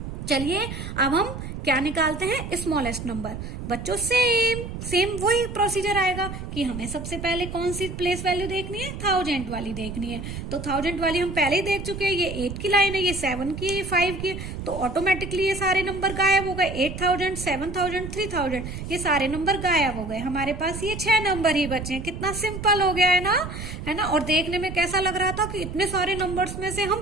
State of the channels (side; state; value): right; noise; rumble, 8 dB below the sound